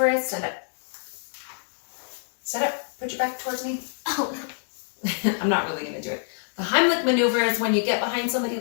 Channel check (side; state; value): right; silent; digital silence